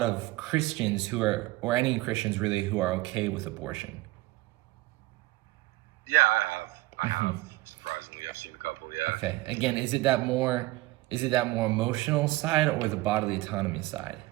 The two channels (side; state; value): left; quieter; 19.4 dB